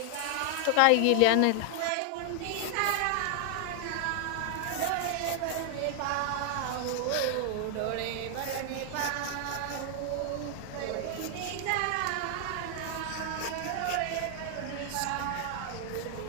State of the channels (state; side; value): different; both; correlation 0.00